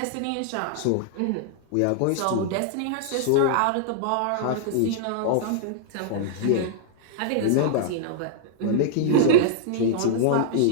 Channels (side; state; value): both; different; correlation -0.01